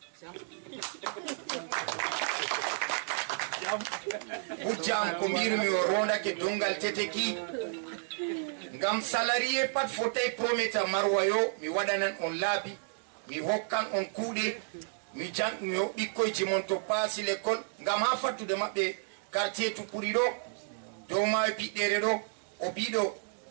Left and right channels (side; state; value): left; silent; digital silence